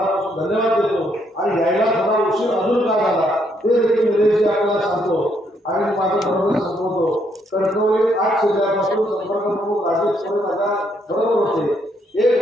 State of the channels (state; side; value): normal; both; correlation 0.73